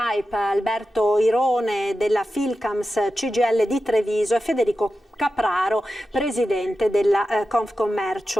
Alberto Irone della Filcams CGIL di Treviso, Federico Capraro, presidente della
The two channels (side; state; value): both; normal; correlation 0.92